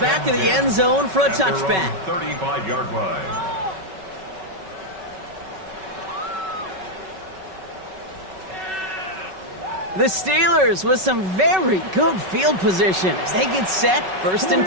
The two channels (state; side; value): late; left; 5.3 ms